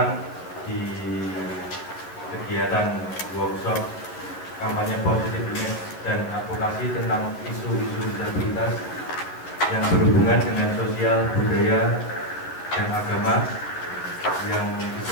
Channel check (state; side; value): late; right; 12 ms